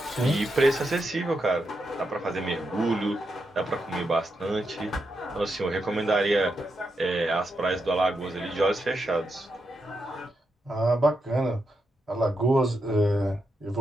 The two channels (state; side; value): normal; both; correlation 0.84